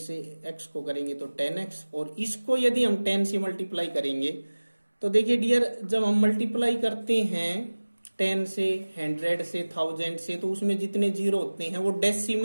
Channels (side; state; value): both; inverted; correlation -1.00